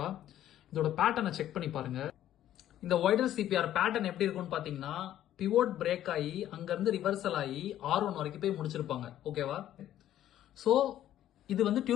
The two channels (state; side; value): quieter; right; 12.1 dB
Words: இதோட பேட்டர்னை செக் பண்ணி பாருங்க. இந்த வைடர் சிபிஆர் பேட்டர்ன் எப்படி இருக்கும்னு பாத்தீங்கன்னா, பிவோட் பிரேக் ஆகி அங்கிருந்து ரிவர்சல் ஆகி R1 வரைக்கும் போய் முடிச்சிருப்பாங்க, ஓகேவா? ஸோ இது வந்து